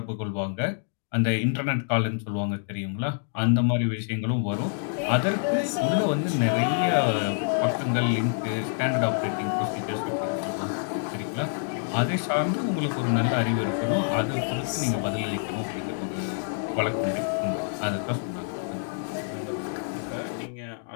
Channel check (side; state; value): right; silent; digital silence